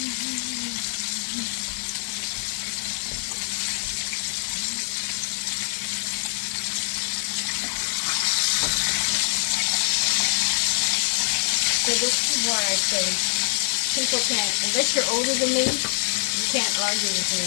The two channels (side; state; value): right; silent; digital silence